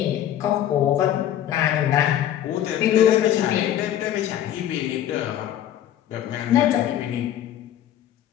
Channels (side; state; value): right; quieter; 11.4 dB